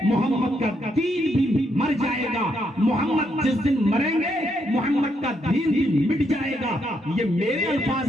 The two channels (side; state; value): both; normal; correlation 0.76